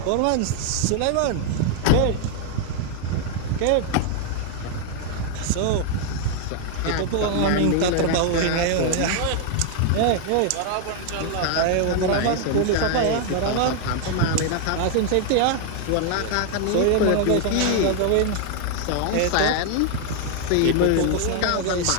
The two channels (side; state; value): both; different; correlation 0.00